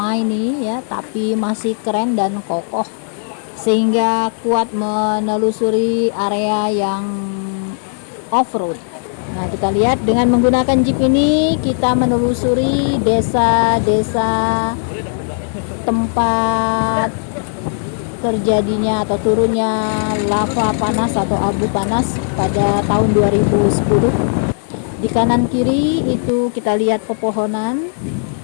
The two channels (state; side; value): silent; right; digital silence